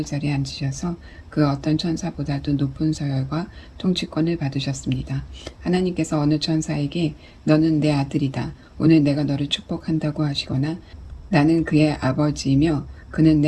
자리에 앉으셔서 그 어떤 천사보다도 높은 서열과 통치권을 받으셨습니다. 하나님께서 어느 천사에게 너는 내 아들이다. 오늘 내가 너를 축복한다고 하시거나 나는 그의 아버지이며 그는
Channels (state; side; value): identical; both; correlation 1.00